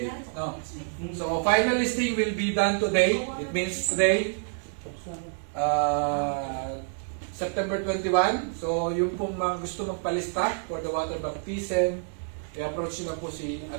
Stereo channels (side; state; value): left; silent; 60 dB below the other